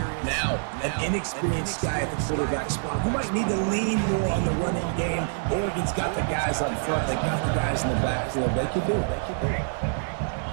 Now, an inexperienced guy at the quarterback spot who might need to lean more on the running game. Oregon's got the guys up front. They got the guys in the backfield. They can do it.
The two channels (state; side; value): silent; left; digital silence